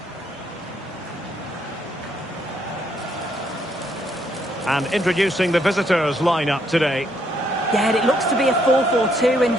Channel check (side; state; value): both; normal; correlation 0.72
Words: And introducing the visitors lineup today. Yeah, it looks to be a 4-4-2, and